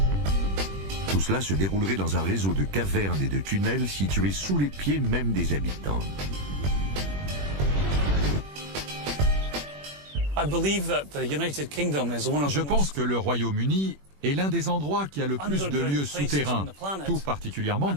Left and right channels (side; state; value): left; late; 21 ms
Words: Tout cela se déroulerait dans un réseau de cavernes et de tunnels situés sous les pieds même des habitants. Je pense que le Royaume-Uni est l'un des endroits qui a le plus de lieux souterrains, tout particulièrement